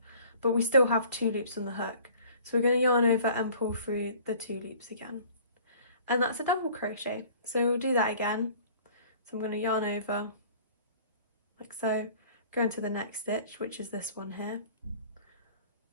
but we still have 2 loops on the hook. So we're going to yarn over and pull through the 2 loops again. And that's a double crochet. So we'll do that again. So I'm going to yarn over like so, go into the next stitch, which is this one here.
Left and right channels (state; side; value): inverted; both; correlation -0.50